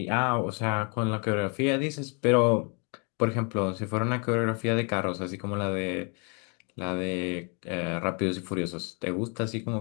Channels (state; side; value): quieter; right; 35.6 dB